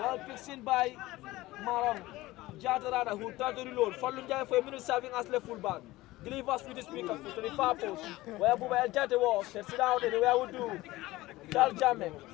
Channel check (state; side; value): quieter; right; 18.3 dB